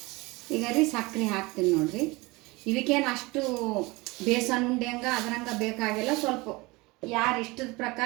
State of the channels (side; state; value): left; quieter; 23.4 dB